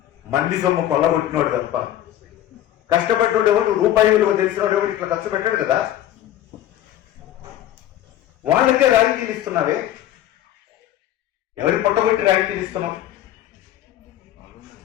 మంది సొమ్ము కొల్లగొట్టినోడు తప్ప కష్టపడ్డాడు ఎవరు? రూపాయి విలువ తెలిసినోడు ఎవరు ఇట్లా ఖర్చు పెట్టాడు కదా. వాళ్ళకే రాయితీలు ఇస్తున్నావే, ఎవరి పొట్టగొట్టి రాయితీలు ఇస్తున్నాం?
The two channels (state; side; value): quieter; right; 12.4 dB